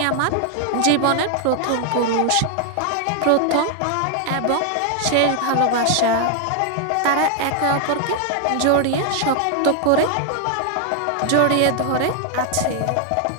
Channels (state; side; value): different; both; correlation 0.00